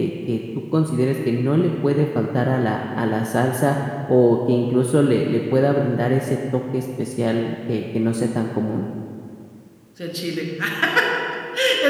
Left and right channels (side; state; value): both; identical; correlation 1.00